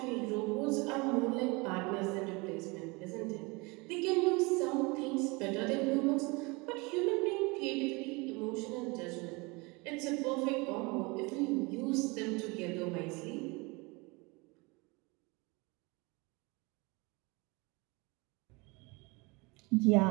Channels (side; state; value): left; quieter; 26.7 dB